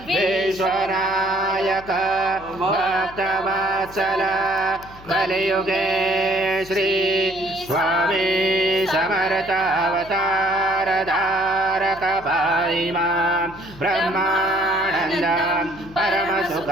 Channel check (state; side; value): noise; left; hum, 20 dB below the sound